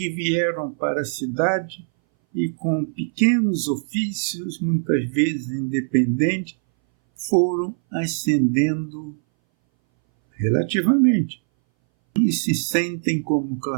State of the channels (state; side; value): silent; left; 61 dB below the other